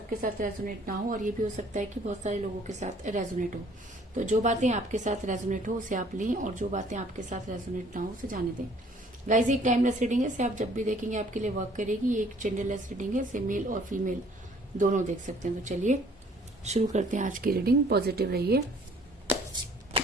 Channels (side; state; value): both; normal; correlation 0.57